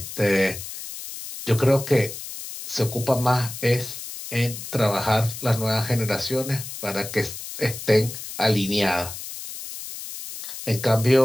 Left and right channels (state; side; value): noise; left; hiss, 10 dB below the sound